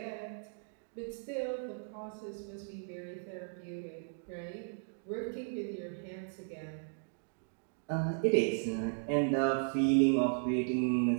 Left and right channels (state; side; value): silent; left; digital silence